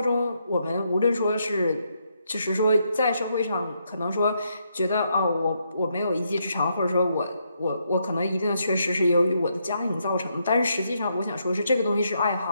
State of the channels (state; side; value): inverted; both; correlation -0.78